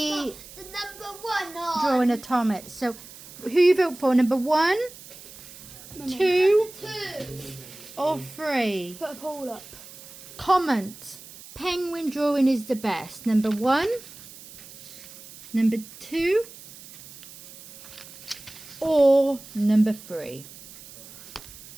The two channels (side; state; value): right; noise; hiss, 18 dB below the sound